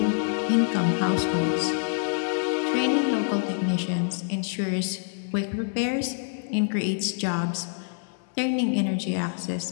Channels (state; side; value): silent; right; 61 dB below the other